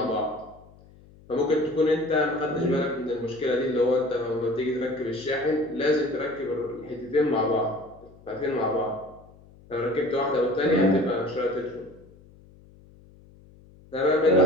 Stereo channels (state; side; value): noise; left; hum, 25 dB below the sound